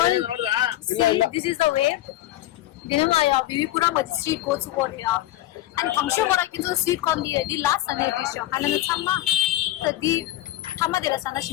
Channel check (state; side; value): quieter; right; 14.9 dB